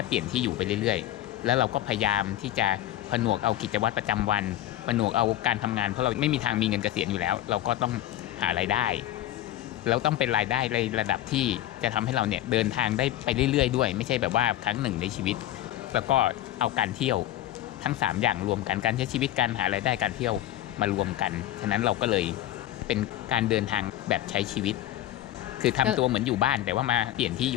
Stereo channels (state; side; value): quieter; right; 13.5 dB